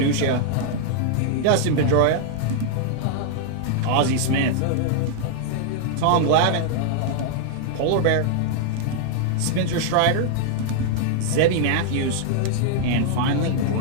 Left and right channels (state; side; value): different; both; correlation -0.01